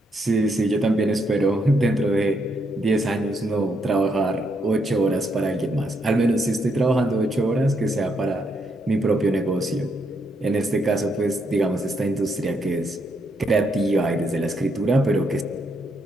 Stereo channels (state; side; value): normal; both; correlation 0.77